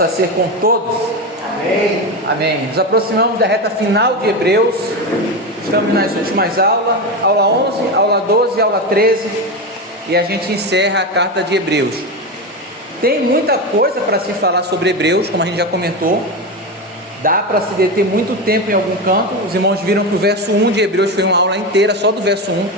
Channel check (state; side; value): normal; both; correlation 0.17